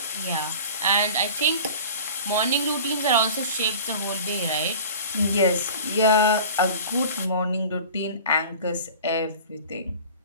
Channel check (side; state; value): both; inverted; correlation -0.40